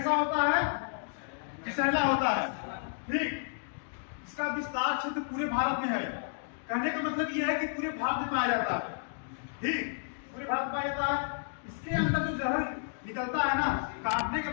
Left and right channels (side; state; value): right; silent; digital silence